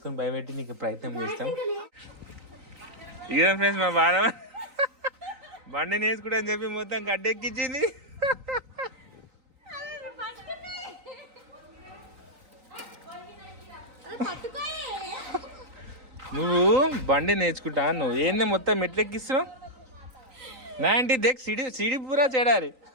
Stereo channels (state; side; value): late; left; 3.9 ms